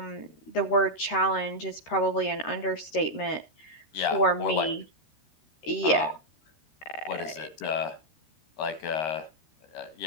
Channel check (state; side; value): late; right; 13 ms